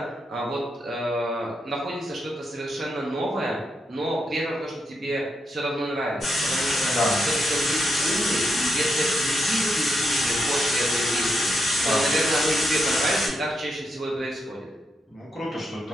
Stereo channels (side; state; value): both; normal; correlation 0.82